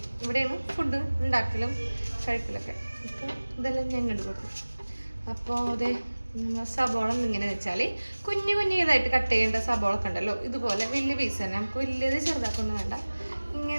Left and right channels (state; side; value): inverted; both; correlation -1.00